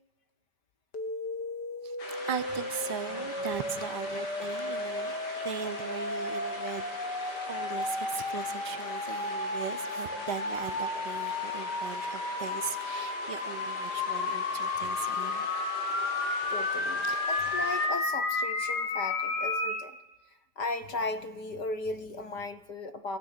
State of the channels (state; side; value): late; right; 5.1 ms